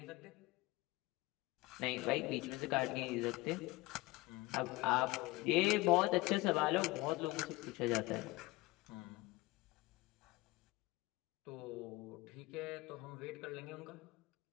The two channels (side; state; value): right; quieter; 21.1 dB